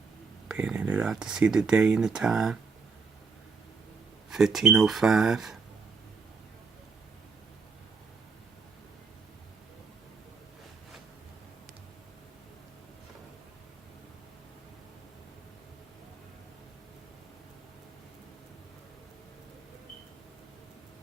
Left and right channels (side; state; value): left; quieter; 4.8 dB